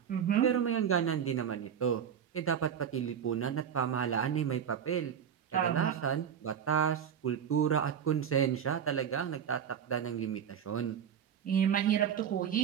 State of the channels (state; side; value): quieter; left; 8.4 dB